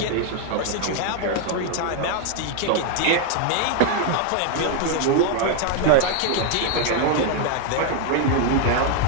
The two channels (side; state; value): both; different; correlation 0.00